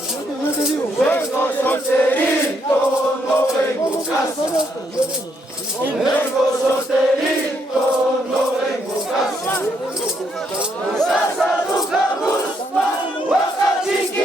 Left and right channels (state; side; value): normal; both; correlation 0.74